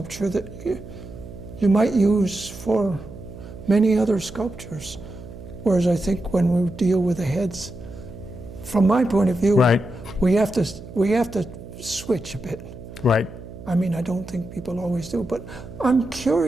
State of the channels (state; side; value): noise; right; hum, 14 dB below the sound